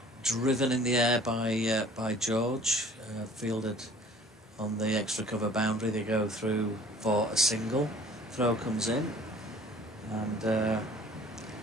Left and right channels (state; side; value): normal; both; correlation 0.51